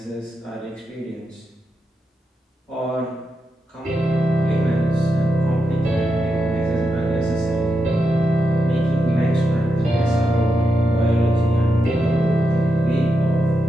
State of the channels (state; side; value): normal; both; correlation 0.86